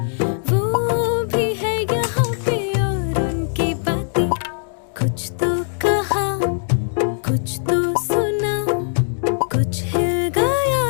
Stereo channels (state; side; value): silent; right; digital silence